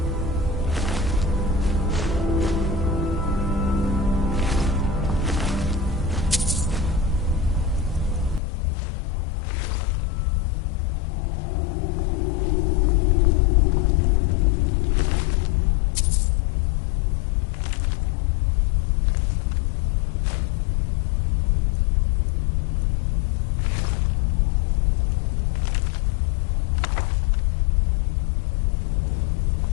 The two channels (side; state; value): right; drops out; at 8.4 s